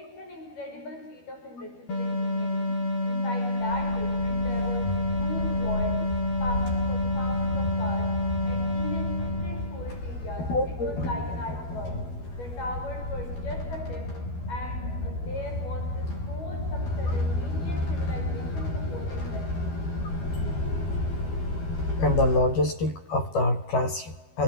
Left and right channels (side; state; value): right; late; 12 ms